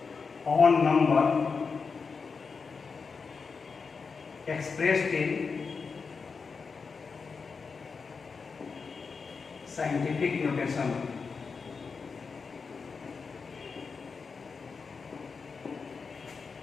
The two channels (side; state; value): right; quieter; 5.1 dB